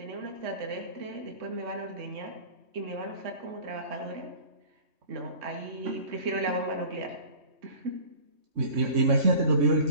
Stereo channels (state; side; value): late; left; 3.2 ms